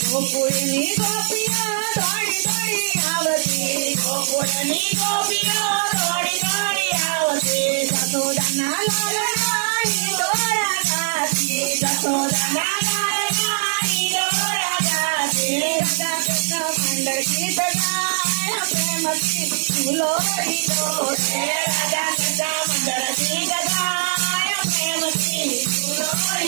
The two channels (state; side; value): silent; left; digital silence